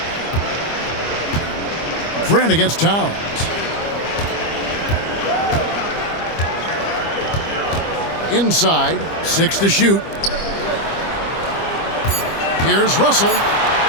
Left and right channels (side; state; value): right; late; 25 ms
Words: Grant against Towns. Inside, 6 to shoot. Here's Russell.